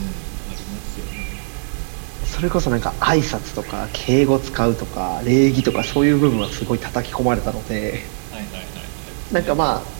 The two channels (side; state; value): left; silent; digital silence